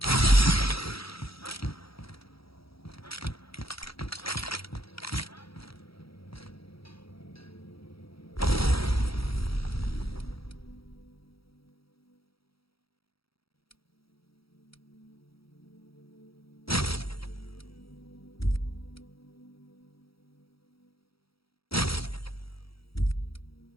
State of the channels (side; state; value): right; late; 0.75 ms